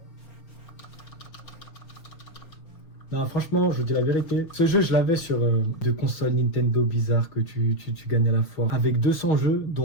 Non franchement, je vous dis la vérité, ce jeu je l'avais sur de consoles Nintendo bizarres que tu gagnes à la fois. Avec 200 jeux,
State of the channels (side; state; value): right; late; 5.7 ms